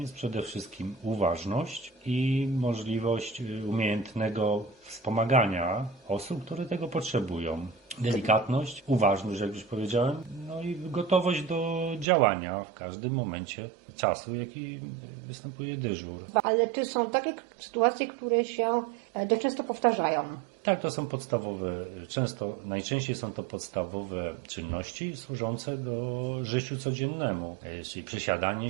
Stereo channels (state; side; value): drops out; left; at 12.1 s